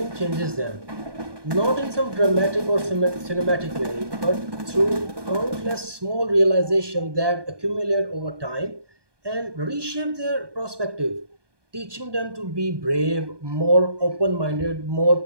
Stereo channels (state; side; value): late; left; 1.2 ms